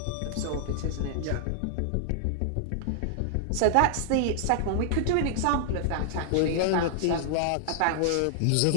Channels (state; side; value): different; both; correlation -0.01